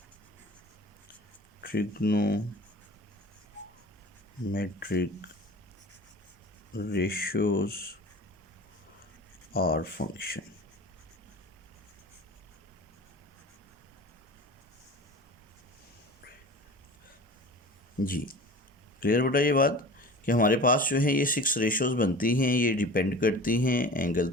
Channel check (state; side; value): normal; both; correlation 0.38